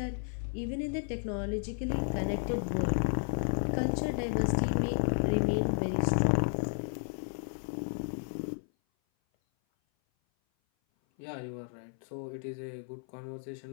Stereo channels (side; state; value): right; silent; 56 dB below the other